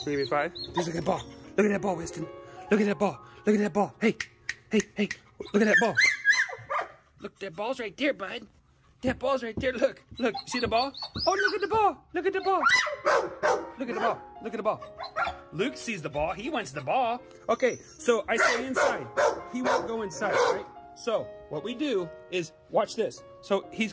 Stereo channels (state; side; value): identical; both; correlation 1.00